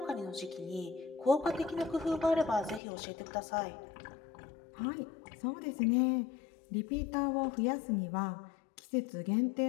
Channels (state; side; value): drops out; right; at 2.8 s